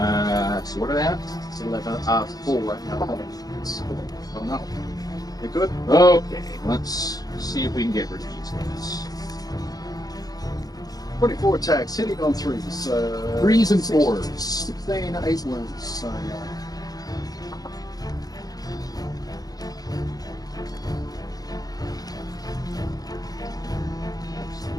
You good? Okay, let's see if we can get rid of these guys. 24 attacks, hitting on 3s. 3s and 16, 4s. 16, 8 wounds. So,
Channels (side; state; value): right; late; 0.18 ms